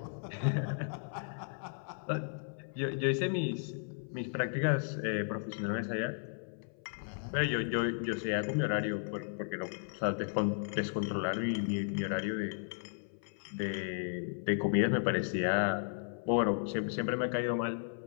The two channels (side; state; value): right; silent; 55 dB below the other